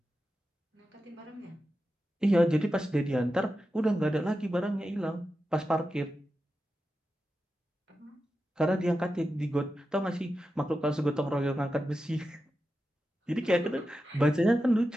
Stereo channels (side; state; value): both; normal; correlation 0.91